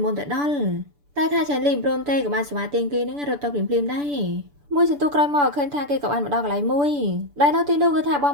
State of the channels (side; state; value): left; late; 6.9 ms